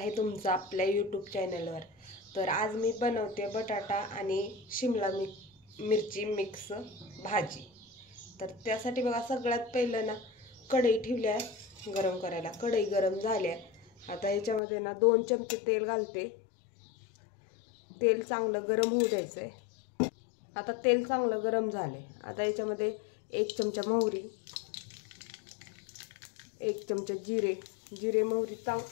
तुमचं आपल्या यूट्यूब चॅनलवर। तर आज मी बनवते बटाटा आणि शिमला मिरची मिक्स भाजी। तर त्यासाठी बघा सगळ्यात पहिलं ना कढई ठेवली आहे गरम करायला। कढई गरम झाल्या, आता याच्यामध्ये ना 2 चमचे तेल घालते। तेल चांगलं गरम होऊ द्यायचंय। आता तेल चांगलं गरम झाले, आता याच्यामध्ये 1 चमचा मोहरी, 1 चमचा जिरे मोहरी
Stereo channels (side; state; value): right; drops out; at 14.6 s